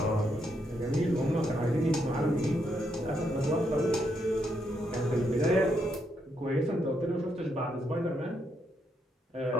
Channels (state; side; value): normal; both; correlation 0.77